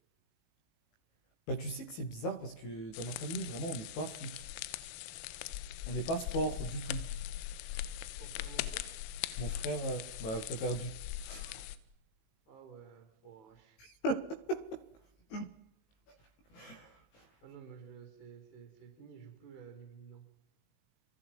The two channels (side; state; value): right; late; 18 ms